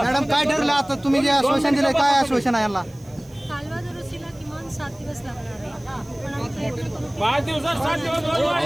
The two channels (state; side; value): noise; right; hiss, 27 dB below the sound